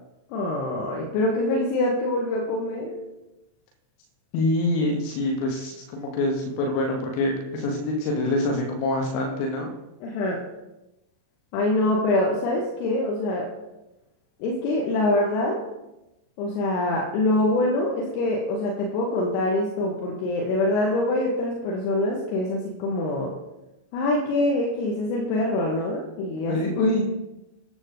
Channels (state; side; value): late; right; 38 ms